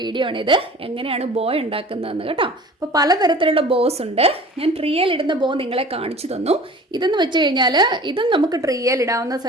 ആണിത്, എങ്ങനെയാണ് ബോ ഉണ്ടാക്കുന്നതെന്ന് കേട്ടോ. അപ്പോൾ പലതരത്തിലുള്ള ബോസ് ഉണ്ട്. ഞാൻ ട്രീയിൽ ഇടുന്ന ബോ നിങ്ങളെ കാണിച്ചു തന്നു. ഇതെന്ന് വെച്ച് കഴിഞ്ഞാൽ ഇതും നമുക്ക് ട്രീയിൽ ഇടാവുന്ന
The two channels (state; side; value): normal; both; correlation 0.43